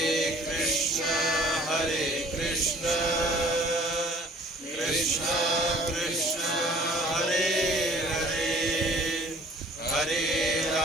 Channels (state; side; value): normal; both; correlation 0.53